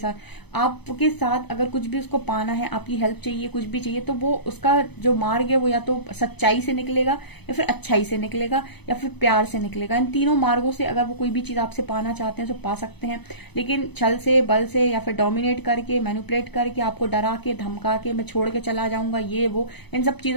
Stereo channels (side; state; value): right; late; 0.98 ms